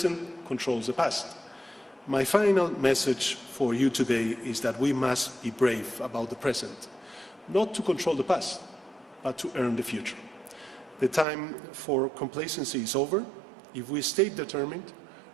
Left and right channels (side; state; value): left; drops out; at 11.2 s